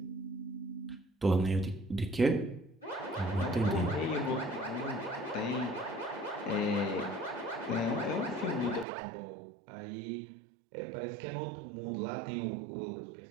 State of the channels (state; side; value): drops out; left; at 8.8 s